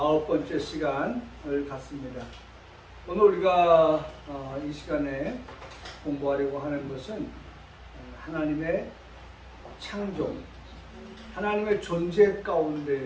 시간을 갖습니다. 오늘 우리가 이 시간에 공부하려고 하는 것은 하나님의 창조, 하나님의 존재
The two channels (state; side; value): identical; both; correlation 1.00